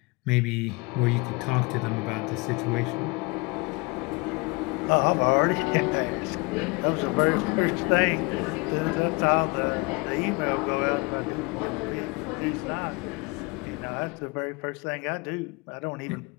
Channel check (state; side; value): quieter; right; 27.4 dB